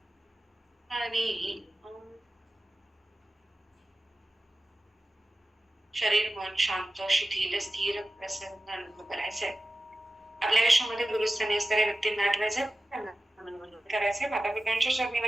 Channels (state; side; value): normal; both; correlation 0.95